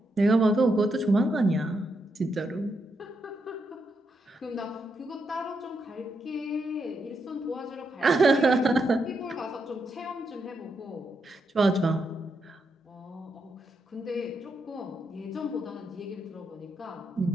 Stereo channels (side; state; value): both; normal; correlation 0.82